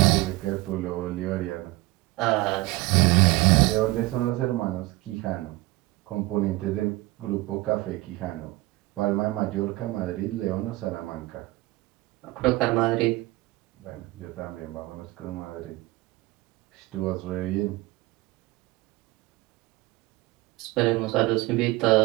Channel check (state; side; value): quieter; left; 20.3 dB